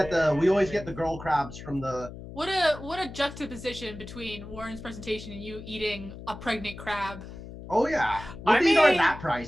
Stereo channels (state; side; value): noise; left; hum, 13 dB below the sound